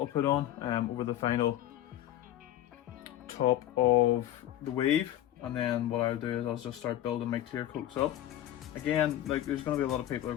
put on over the final top of the wave, and then what I'll do is I'll just start building my clear coats up. Again, like, there's going to be a lot of people who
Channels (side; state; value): right; quieter; 12.7 dB